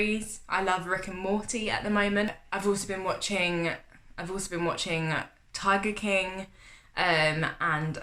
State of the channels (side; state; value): both; identical; correlation 1.00